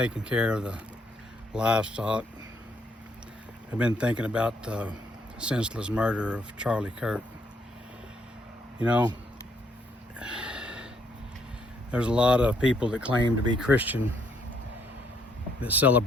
care of the livestock, I've been thinking about the senseless murder of Charlie Kirk. You know, there's a lot of people that claim to be Christian that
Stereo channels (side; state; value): both; normal; correlation 0.71